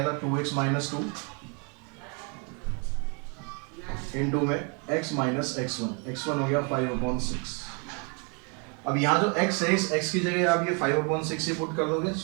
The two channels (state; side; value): quieter; left; 35.6 dB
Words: था 2x - 2 इनटू में x - x1 हो गया 5/6। अब यहाँ जो x है इस x की जगह आप ये 5/6 ही पुट कर दोगे